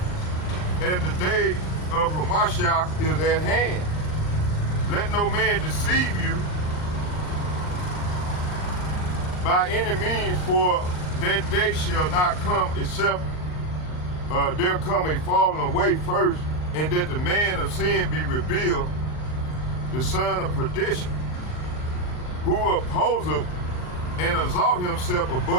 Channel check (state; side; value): late; right; 39 ms